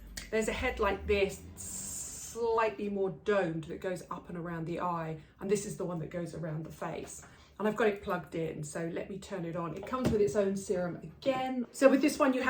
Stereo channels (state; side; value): identical; both; correlation 1.00